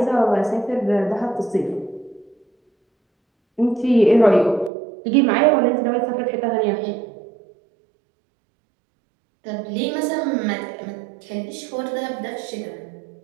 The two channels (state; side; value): drops out; left; at 4.7 s